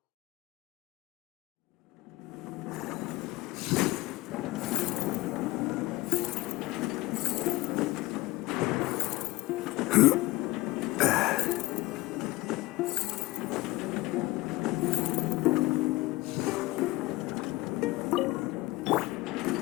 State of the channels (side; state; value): right; quieter; 19.9 dB